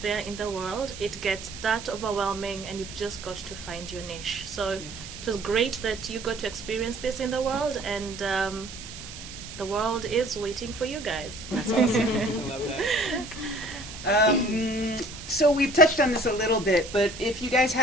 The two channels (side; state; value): right; noise; hiss, 13 dB below the sound